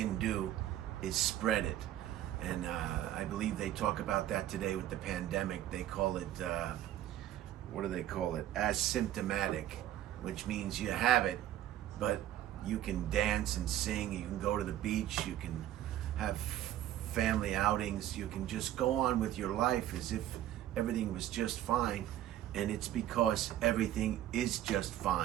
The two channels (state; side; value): quieter; left; 12.7 dB